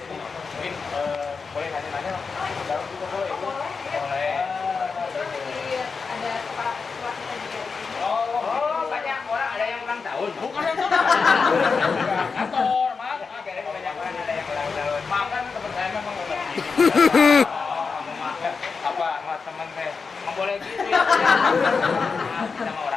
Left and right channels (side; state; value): right; quieter; 5.0 dB